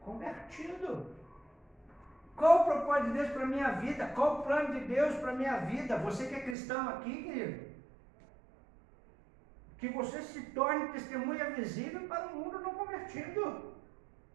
convertido. Qual o propósito de Deus para a minha vida? Qual o plano de Deus para a minha vida? Você que é cristão aqui, querido, que você se torne testemunha visível para o mundo não convertido.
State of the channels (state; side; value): drops out; left; at 6.6 s